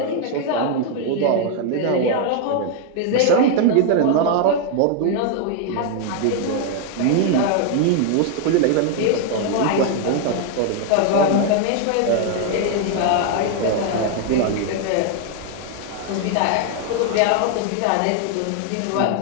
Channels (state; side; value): different; both; correlation 0.00